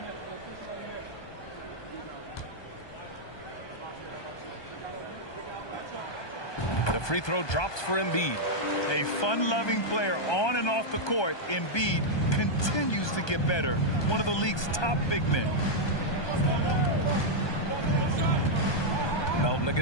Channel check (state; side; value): late; right; 1.2 ms